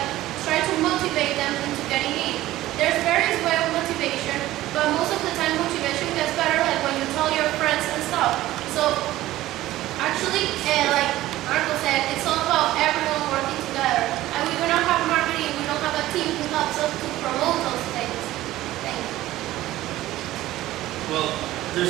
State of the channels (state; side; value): quieter; left; 15.6 dB